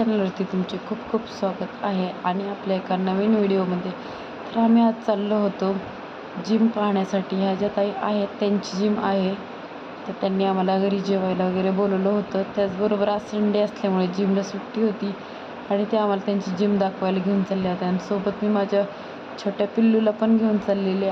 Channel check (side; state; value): both; identical; correlation 1.00